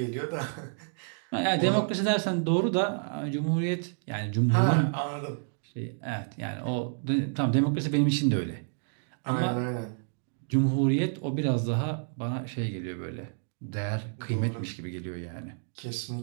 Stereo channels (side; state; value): left; silent; digital silence